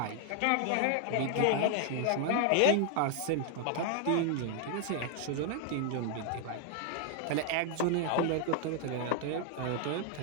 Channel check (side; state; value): both; different; correlation 0.00